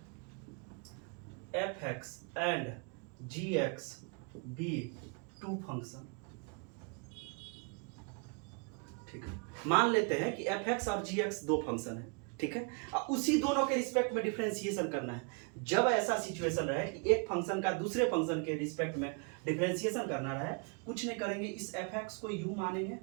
f x and g x be two function. ठीक है, मान लेते हैं कि एफ एक्स और जी एक्स दो फंक्शन है। ठीक है, उसी दोनों के रिस्पेक्ट में डिफरेंशिएशन करना है। जब ऐसा सिचुएशन रहे कि एक फंक्शन का दूसरे फंक्शन के रिस्पेक्ट में डिफरेंशिएशन करना रहे, कुछ नहीं करेंगे, इस एफ एक्स को यू मानेंगे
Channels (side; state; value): left; quieter; 34.5 dB